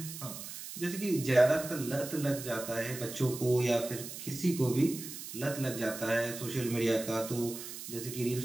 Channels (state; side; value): noise; right; hiss, 10 dB below the sound